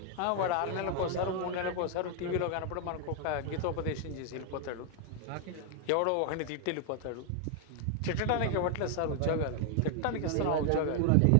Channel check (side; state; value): both; different; correlation 0.00